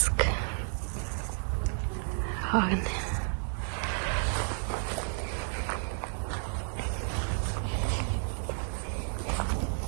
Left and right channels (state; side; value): silent; left; 57 dB below the other